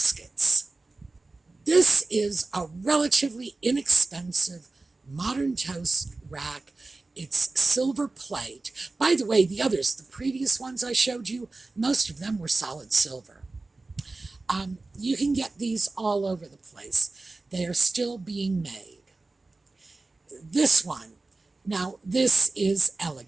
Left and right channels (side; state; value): left; quieter; 3.4 dB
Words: This is a relatively inexpensive modern toast rack. It's silver plate. By the way, the others, the previous ones I showed you, most of them were solid silver. You can get these all over the place. They are still being made. This one, now this is